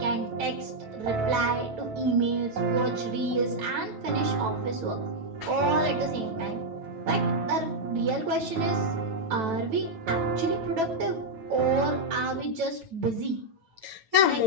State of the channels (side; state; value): left; late; 9.1 ms